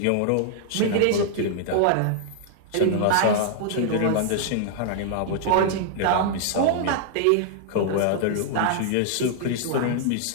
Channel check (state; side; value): different; both; correlation -0.01